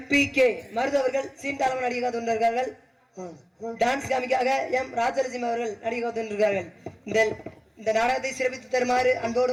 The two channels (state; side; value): identical; both; correlation 1.00